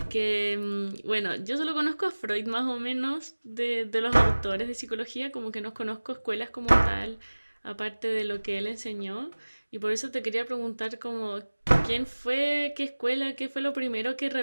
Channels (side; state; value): both; inverted; correlation -1.00